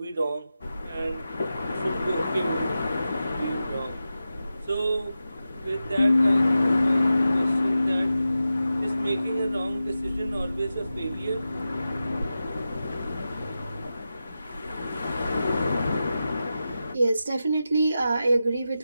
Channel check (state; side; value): inverted; both; correlation -0.92